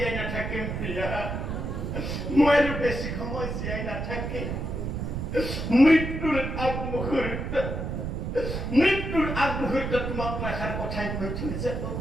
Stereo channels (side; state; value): right; noise; rumble, 3 dB below the sound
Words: নাথাকিম প্ৰিয়া মৃত্যুৰ আগমুহূৰ্তত তোমাক মই এষাৰ কথাই কৈ থৈ যাব